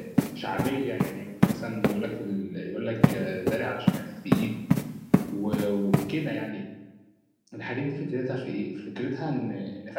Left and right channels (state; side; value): identical; both; correlation 1.00